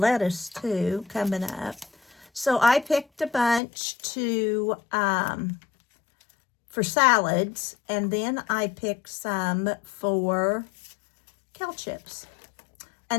too coming up. So I picked a bunch for salads, and then I picked some for kale chips,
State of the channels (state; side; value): drops out; right; at 3.6 s